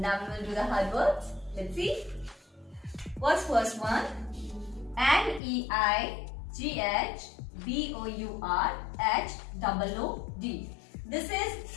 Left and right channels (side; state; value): right; drops out; at 5.4 s